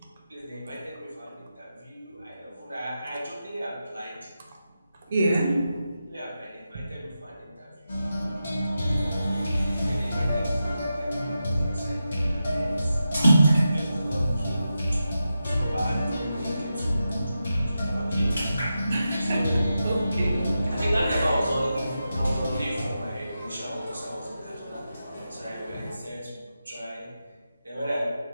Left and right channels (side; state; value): both; inverted; correlation -0.89